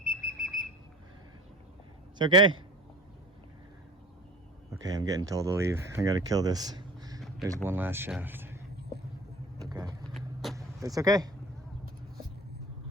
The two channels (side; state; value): both; normal; correlation 0.40